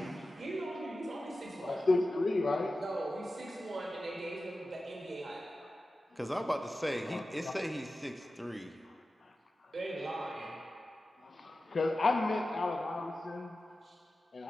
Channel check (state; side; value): normal; both; correlation 0.94